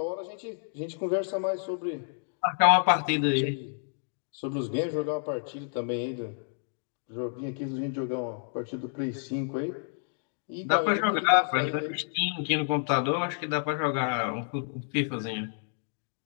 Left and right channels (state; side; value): silent; right; digital silence